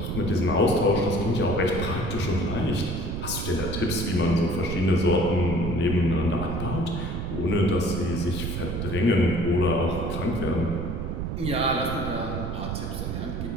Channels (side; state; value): right; noise; rumble, 3 dB below the sound